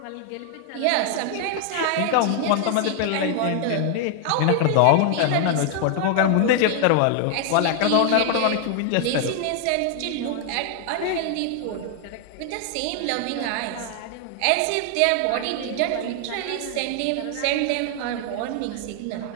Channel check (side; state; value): both; different; correlation 0.00